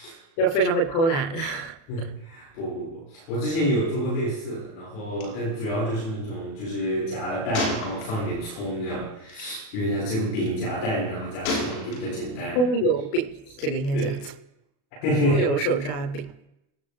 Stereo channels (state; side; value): late; right; 36 ms